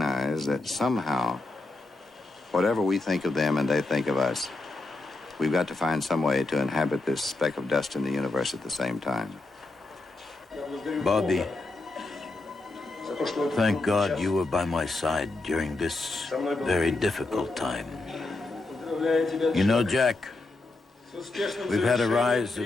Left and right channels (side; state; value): right; quieter; 3.1 dB